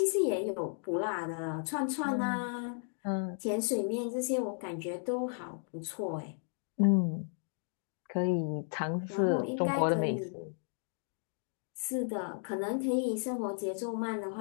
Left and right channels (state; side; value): silent; right; 55 dB below the other